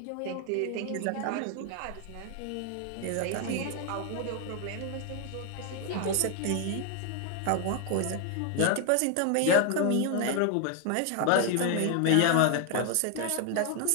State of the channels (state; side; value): different; both; correlation 0.00